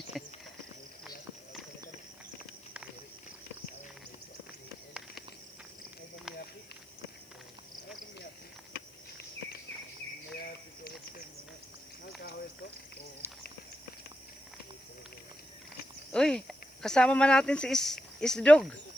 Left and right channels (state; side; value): noise; left; hiss, 27 dB below the sound